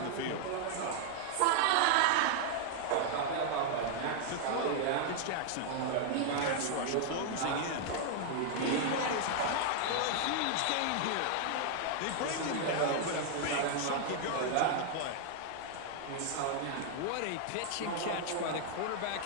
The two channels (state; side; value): different; both; correlation 0.00